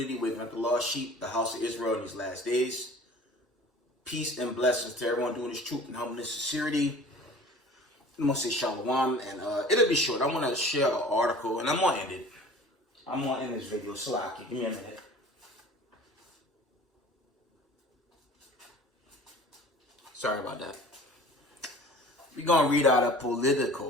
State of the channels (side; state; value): both; normal; correlation 0.45